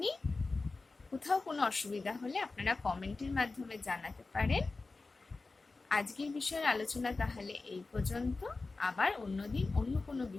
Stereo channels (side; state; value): right; quieter; 3.7 dB